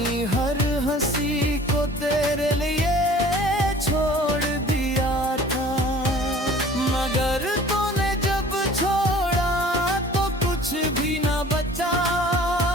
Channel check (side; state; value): both; normal; correlation 0.48